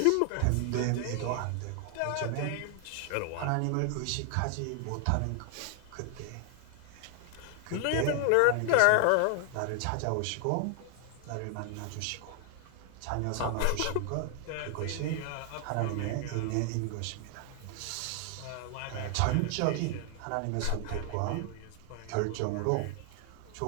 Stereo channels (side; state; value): both; different; correlation 0.00